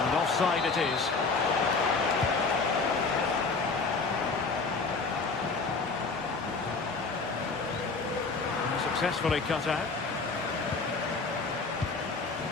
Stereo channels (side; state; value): right; quieter; 4.2 dB